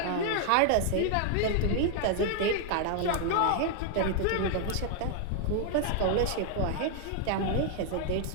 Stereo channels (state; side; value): different; both; correlation 0.00